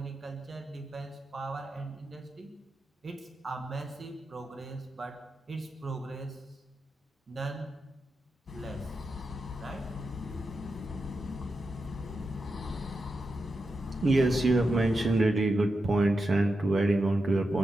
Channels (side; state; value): both; normal; correlation 0.88